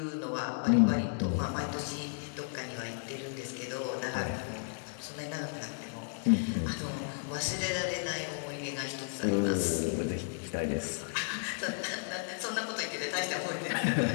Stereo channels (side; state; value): right; silent; 55 dB below the other